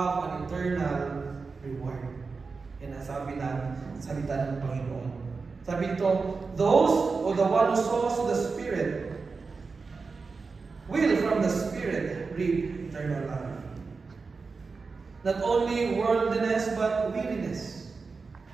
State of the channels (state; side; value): quieter; left; 4.5 dB